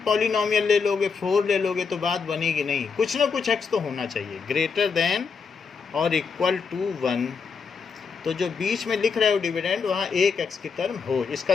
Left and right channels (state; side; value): quieter; right; 5.5 dB